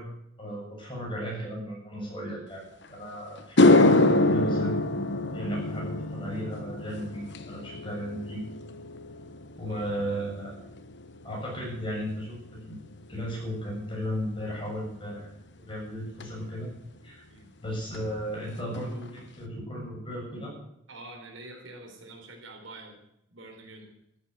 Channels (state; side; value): normal; both; correlation 0.19